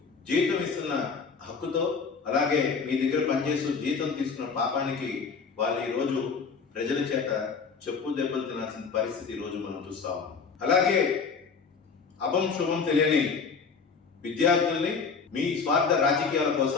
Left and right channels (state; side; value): quieter; right; 5.3 dB